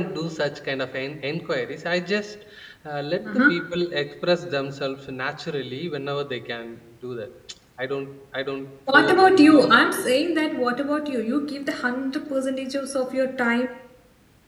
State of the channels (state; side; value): identical; both; correlation 1.00